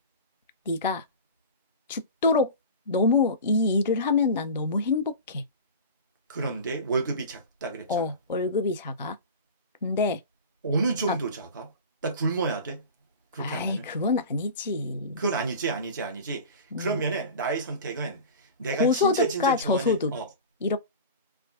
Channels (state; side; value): inverted; both; correlation -0.32